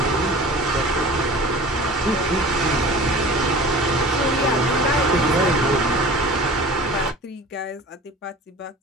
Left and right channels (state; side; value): normal; both; correlation 0.41